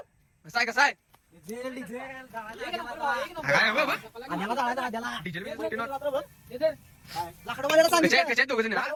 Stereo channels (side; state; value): both; identical; correlation 1.00